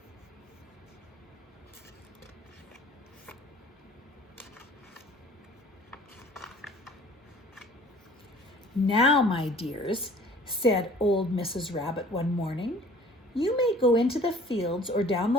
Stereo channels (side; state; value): both; normal; correlation 0.50